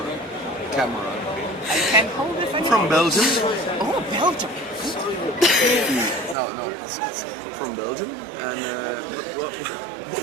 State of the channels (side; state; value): left; drops out; at 6.4 s